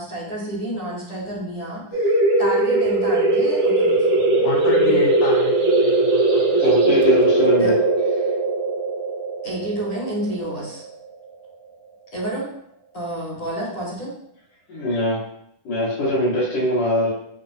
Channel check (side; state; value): right; late; 10 ms